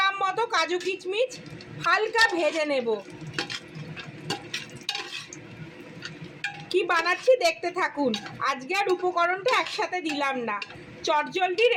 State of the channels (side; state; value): both; identical; correlation 1.00